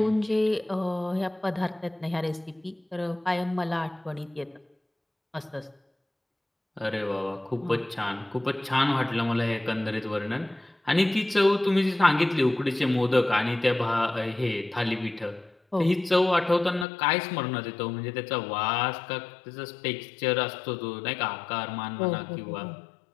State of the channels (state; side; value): drops out; right; at 16.9 s